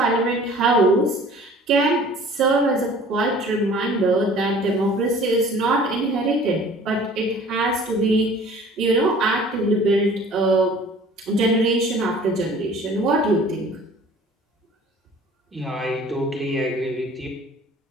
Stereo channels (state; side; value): normal; both; correlation 0.49